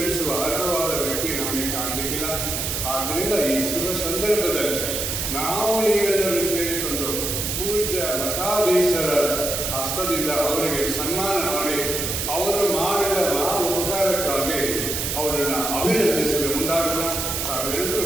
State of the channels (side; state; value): right; noise; hiss, 2 dB below the sound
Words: ಅರ್ಹವಾದ ವ್ಯಕ್ತಿ ನಮಗೆ ಕಾಣಲಿಕ್ಕಿಲ್ಲ. ಆದ್ದರಿಂದ ಈ ಶುಭ ಸಂದರ್ಭದಲ್ಲಿ ನಾವು ನೀವೆಲ್ಲರೂ ಸೇರಿಕೊಂಡು ಪೂಜ್ಯ ಮಠಾಧೀಶರ ಹಸ್ತದಿಂದ ಅವರಿಗೆ ಸನ್ಮಾನ ಮಾಡಿ ಅವರು ಮಾಡಿದ ಮಹಾ ಉಪಕಾರಕ್ಕಾಗಿ ಅವರನ್ನು ಅಭಿನಂದಿಸಲು ಮುಂದಾಗೋಣ. ತಾವೆಲ್ಲರೂ